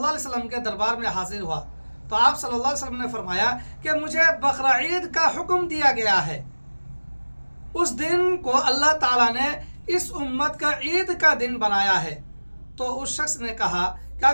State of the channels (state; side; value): inverted; both; correlation -1.00